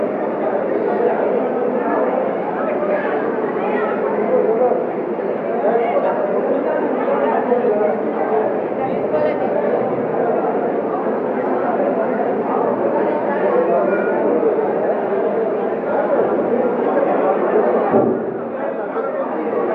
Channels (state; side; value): identical; both; correlation 1.00